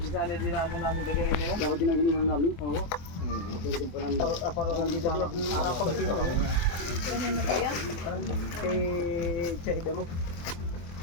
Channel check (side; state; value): right; late; 24 ms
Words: Sana din namin gaganin nyo. Dapat ginaganin namin? Oo. Aparohan din namin. Apagkino kami. Ano na kaya? Kay Chahida mo.